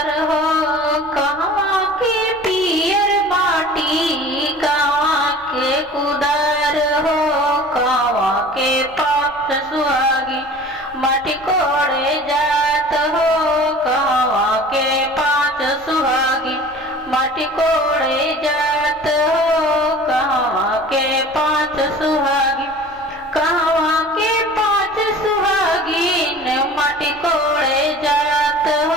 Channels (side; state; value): left; noise; rumble, 25 dB below the sound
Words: हो, कहाँ के पियर माटी कहाँ के कुदार हो, कहाँ के पाप सुहागी माटी कोड़े जात हो, कहाँ के पांच सुहागी माटी कोड़े जात हो, कहाँ के पांच सुहागी, कहाँ के पांच सुहागिन माटी कोड़े जात